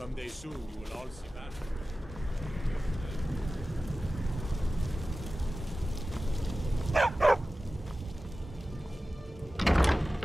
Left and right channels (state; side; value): normal; both; correlation 0.95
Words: soon you will all see that.